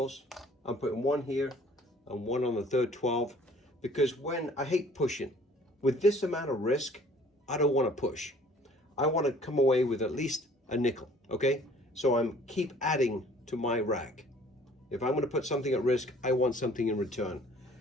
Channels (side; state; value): both; normal; correlation 0.54